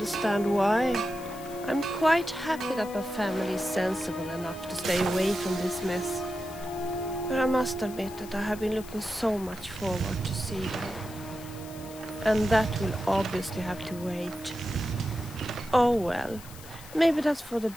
why. I'm quite happy that my family is sensible enough to stay away from this mess. But I must admit that I have been looking so much forward to see them. And that will obviously have to wait. Oh well, maybe that's for the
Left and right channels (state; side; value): noise; left; hiss, 18 dB below the sound